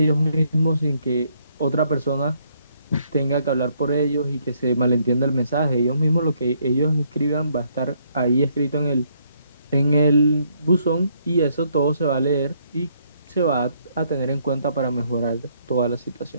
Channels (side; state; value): both; inverted; correlation -0.70